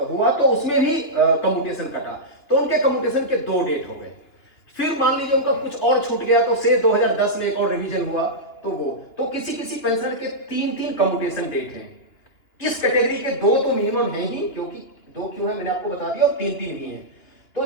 हुआ तो उसमें भी कम्यूटेशन कटा। तो उनके कम्यूटेशन के 2 डेट हो गए। फिर मान लीजिए उनका कुछ और छूट गया तो से 2010 में एक और रिवीजन हुआ, तो वो तो किसी पेंशनर के 3 कम्यूटेशन डेट हैं। इस कैटेगरी के 2 तो मिनिमम है ही, क्योंकि 2 क्यों है मैंने आपको बता दिया, और 3 भी हैं। तो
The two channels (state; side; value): late; right; 2.7 ms